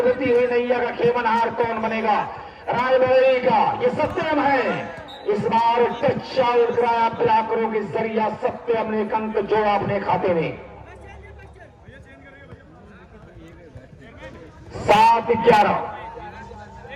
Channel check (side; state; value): both; identical; correlation 1.00